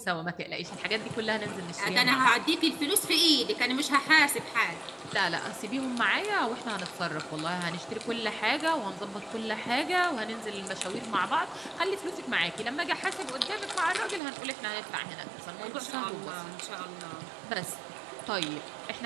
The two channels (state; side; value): drops out; left; at 14.2 s